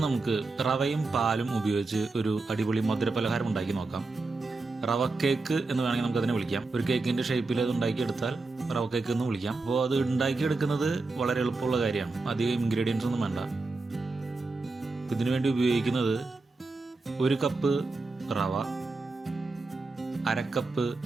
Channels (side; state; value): left; quieter; 3.6 dB